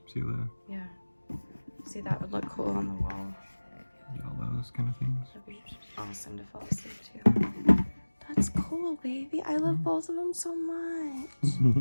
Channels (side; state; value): both; inverted; correlation -1.00